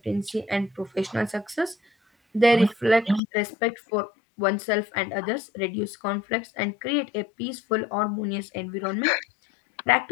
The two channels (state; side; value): drops out; right; at 3.2 s